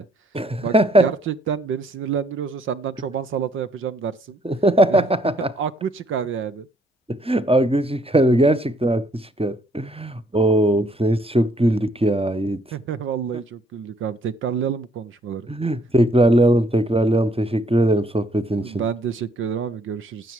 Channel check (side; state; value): both; normal; correlation 0.66